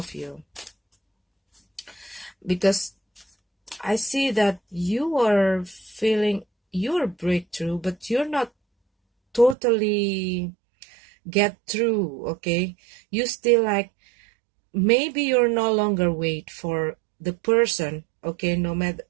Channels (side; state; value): left; drops out; at 9.6 s